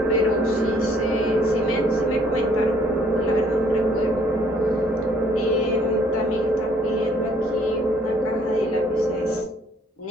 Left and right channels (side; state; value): both; normal; correlation 0.62